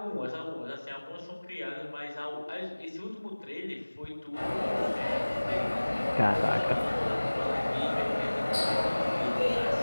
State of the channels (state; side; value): inverted; both; correlation -1.00